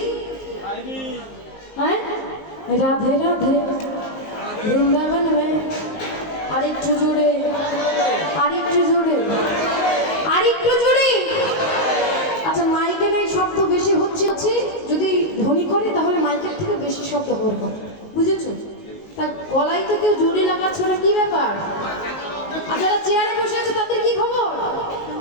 হ্যাঁ রাধে রাধে বৃন্দাবন মে আরেকটু জোরে আরেকটু জোরে আরেকটু জোরে আচ্ছা মাইকে নাই শব্দ বেশি হচ্ছে যদি ধ্বনি করে তাহলে মাইকের থেকে বেশি শব্দ হওয়ার কথা বুঝেছো তা গলায় তো কেউ জোরে লাগাচ্ছ না কি ব্যাপার আর যারা চেয়ারে বসে আছে তাদের কি খবর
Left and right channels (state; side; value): late; right; 19 ms